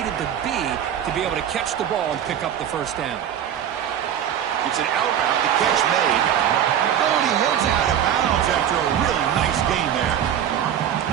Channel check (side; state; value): left; quieter; 9.7 dB